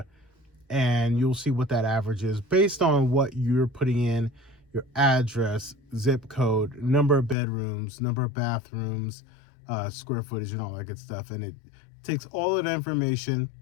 and you'll see what that average is based on what you're putting in: your address, zip code, number of bedrooms, number of bathrooms, square footage, and all that good stuff. And it takes all of that information,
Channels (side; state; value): right; drops out; at 7.4 s